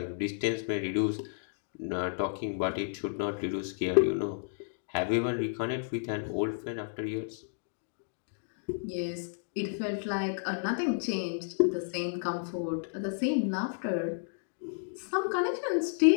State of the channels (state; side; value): silent; right; digital silence